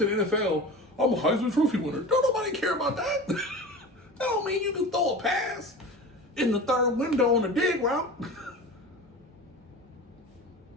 the NFL, I'm a Heisman Trophy winner. Don't nobody care about that. That don't mean you can throw a pass in the third window on a dig route.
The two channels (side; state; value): both; normal; correlation 0.33